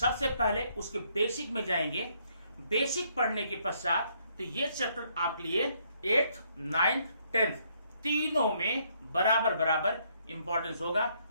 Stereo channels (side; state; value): both; inverted; correlation -0.71